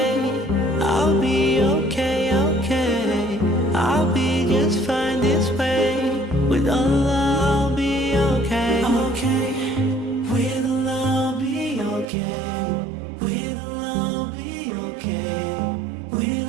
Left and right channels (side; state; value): left; drops out; at 12.1 s